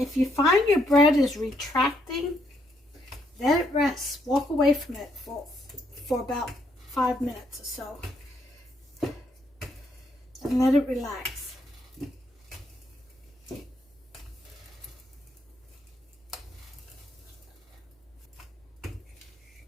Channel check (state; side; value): normal; both; correlation 0.73